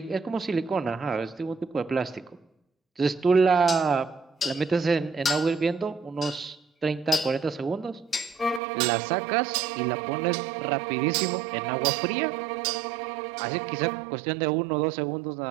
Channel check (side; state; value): left; drops out; at 8.6 s